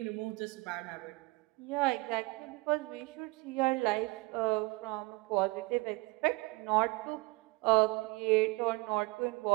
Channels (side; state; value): left; quieter; 23.9 dB